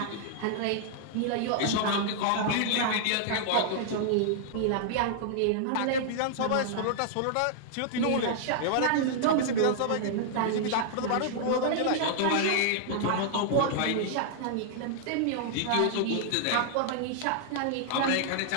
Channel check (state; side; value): different; both; correlation -0.01